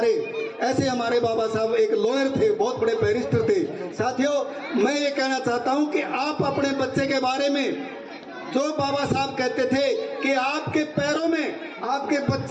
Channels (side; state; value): both; identical; correlation 1.00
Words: ऐसे हमारे बाबा साहब एक लॉयर थे, बहुत बड़े बैरिस्टर थे। साथियों, मैं ये कहना चाहता हूँ कि आप अपने बच्चे के बारे में जो बाबा साहब कहते थे कि आपके पैरों में, आपके